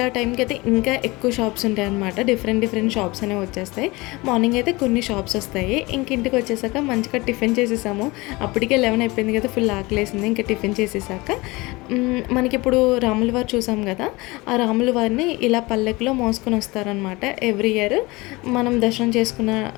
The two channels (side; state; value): right; quieter; 22.9 dB